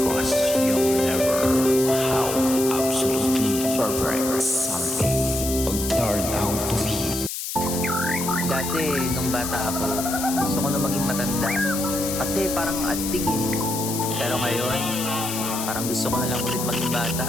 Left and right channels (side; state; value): left; noise; hiss, 5 dB below the sound